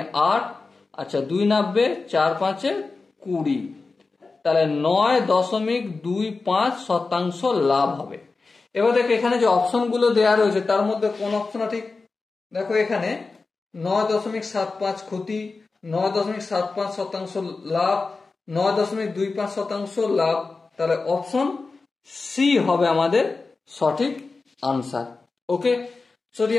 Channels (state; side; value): quieter; right; 4.0 dB